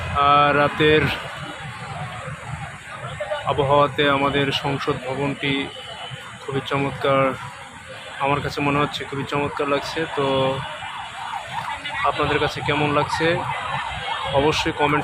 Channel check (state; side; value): identical; both; correlation 1.00